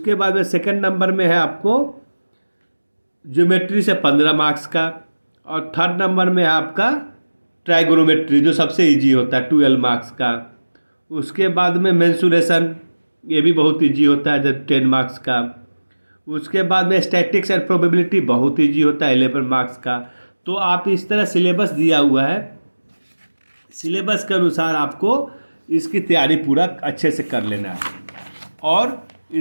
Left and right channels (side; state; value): both; inverted; correlation -1.00